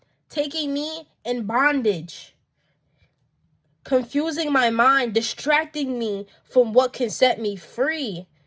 me in bondage, confusing my mind, distracting me from what can set me free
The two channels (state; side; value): identical; both; correlation 1.00